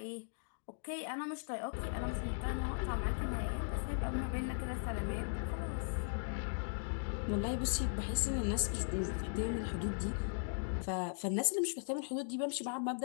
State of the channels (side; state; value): right; silent; digital silence